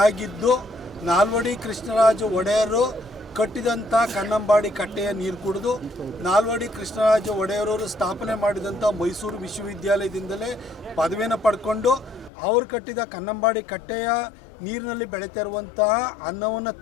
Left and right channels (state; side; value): drops out; right; at 12.3 s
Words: ಆಗಿದ್ದು ನಾಲ್ವಡಿ ಕೃಷ್ಣರಾಜ ಒಡೆಯರು ಕಟ್ಟಿದಂಥ ಕನ್ನಂಬಾಡಿ ಕಟ್ಟೆಯ ನೀರು ಕುಡಿದು ನಾಲ್ವಡಿ ಕೃಷ್ಣರಾಜ ಒಡೆಯರವರು ಸ್ಥಾಪನೆ ಮಾಡಿದಂಥ ಮೈಸೂರು ವಿಶ್ವವಿದ್ಯಾಲಯದಿಂದಲೇ ಪದವಿಯನ್ನು ಪಡ್ಕೊಂಡು ಅವರು ಕಟ್ಟಿದ ಕನ್ನಂಬಾಡಿ ಕಟ್ಟೆಯ ನೀರಿನಲ್ಲಿ ಬೆಳೀತಾ ಇರುವಂತಹ ಅನ್ನವನ್ನು